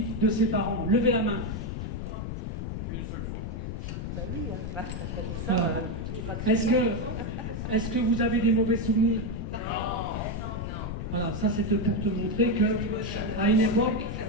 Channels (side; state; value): left; noise; rumble, 4 dB below the sound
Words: de ses parents? Levez la main. Une seule fois. Ben oui, hein. Est-ce que vous avez des mauvais souvenirs? Non. Voilà, ça c'était pour te montrer qu'à une époque,